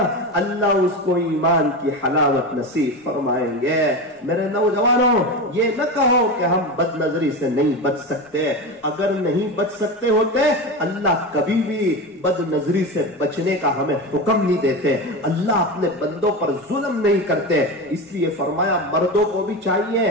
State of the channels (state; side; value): normal; both; correlation 0.22